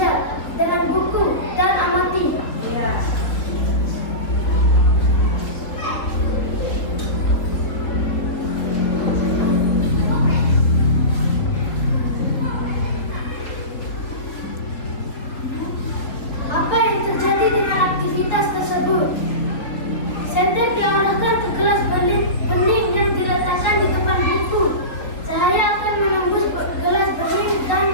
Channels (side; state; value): right; late; 4.1 ms